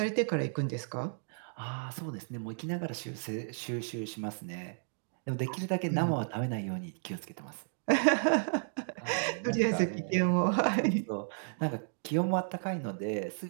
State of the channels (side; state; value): left; silent; digital silence